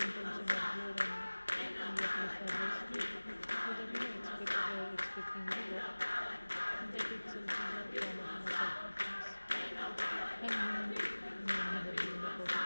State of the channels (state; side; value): inverted; both; correlation -1.00